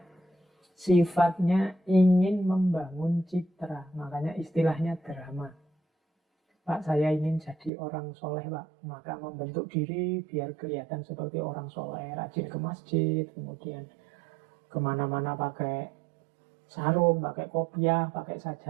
sifatnya ingin membangun citra. Makanya istilahnya drama. Pak, saya ingin jadi orang soleh, Pak. Maka membentuk diri biar kelihatan seperti orang soleh. Rajin ke masjid, kemudian kemana-mana pakai sarung, pakai kopiah, pakai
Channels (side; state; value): left; drops out; at 7.7 s